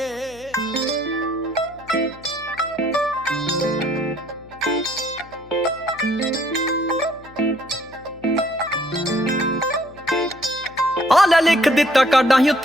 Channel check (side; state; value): left; noise; hum, 22 dB below the sound